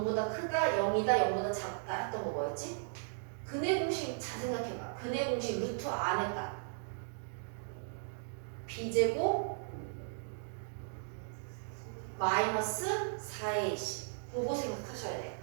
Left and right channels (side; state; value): left; silent; digital silence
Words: 크다, 0이다, 0보다 작다 했던 거 뭐였지? 근의 공식 잘 생각해봐. 근의 공식 루트 안에 딱 b제곱 마이너스 4ac 그거 생각하셔야 돼요.